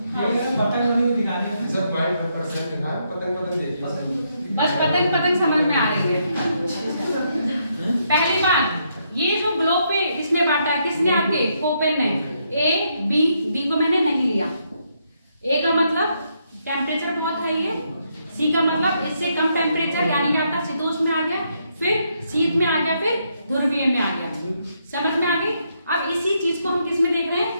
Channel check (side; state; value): both; inverted; correlation -0.77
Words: बस पतंग समझ में आ रही है। पहली बात, ये जो ग्लोब पे इसने बांटा किसने? आपके कोपेन ने। ए बी, डी को मैंने नहीं लिया। ए का मतलब टेम्परेचर बहुत हाई है, सी का मतलब इससे कम टेम्परेचर यानी कि आपका शीतोष्ण में आ गया, फिर शीत में आ गया, फिर ध्रुवीय में आ गया। समझ में आ गई? अब इसी चीज को हम किस में देख रहे हैं?